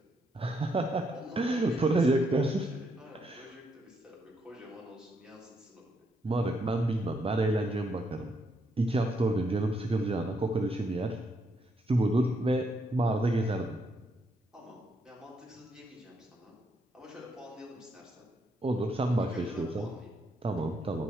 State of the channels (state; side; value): normal; both; correlation 0.76